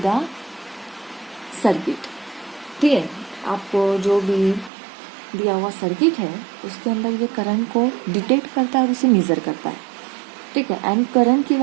the circuit. ठीक है, आपको जो भी दिया हुआ circuit है उसके अंदर ये करंट को डिटेक्ट करता है और उसे मेजर करता है. ठीक है, एंड करंट की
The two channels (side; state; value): left; drops out; at 4.7 s